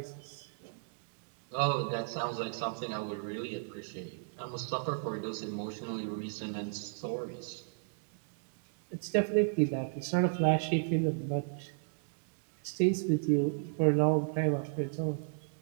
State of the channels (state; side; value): silent; left; digital silence